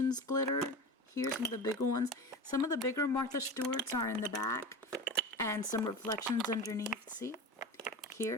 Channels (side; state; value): both; normal; correlation 0.28